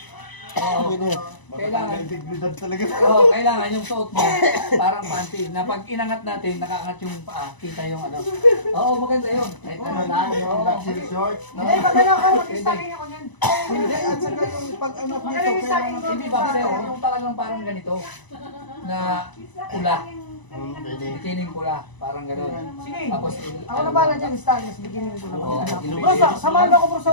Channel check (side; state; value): right; late; 1.0 ms